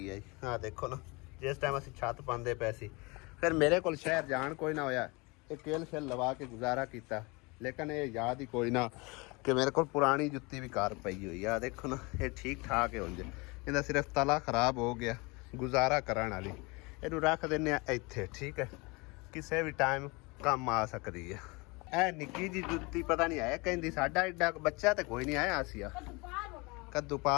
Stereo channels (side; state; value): right; quieter; 26.7 dB